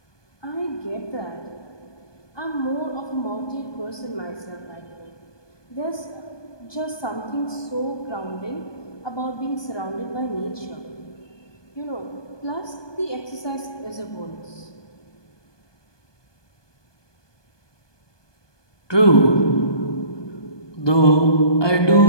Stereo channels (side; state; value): right; late; 1.2 ms